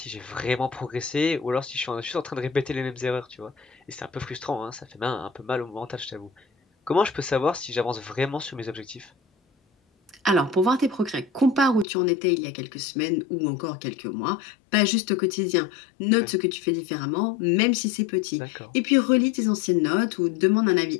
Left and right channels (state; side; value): drops out; right; at 11.9 s